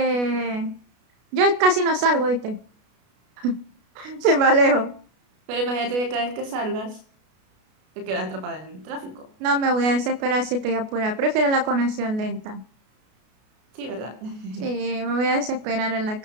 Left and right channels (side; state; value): left; late; 33 ms